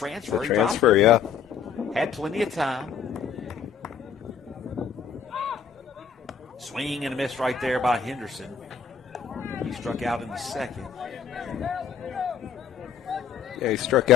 he dropped it. Yeah. Had plenty of time. Swing and a miss right there by Henderson. He struck out in the second. Yeah, he struck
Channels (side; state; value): right; quieter; 7.1 dB